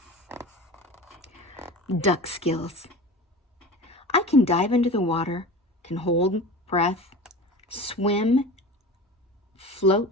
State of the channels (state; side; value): normal; both; correlation 0.34